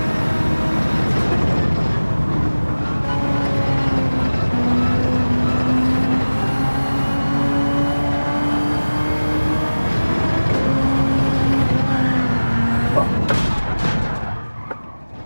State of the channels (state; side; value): inverted; both; correlation -1.00